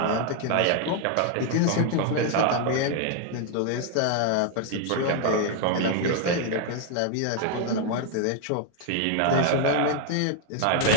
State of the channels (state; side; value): different; both; correlation 0.00